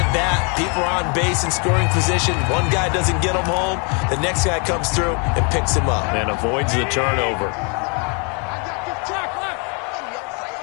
bat, people are on base in scoring position. One guy doesn't get him home. The next guy comes through and picks him up. And avoids the turnover.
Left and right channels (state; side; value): quieter; right; 35.5 dB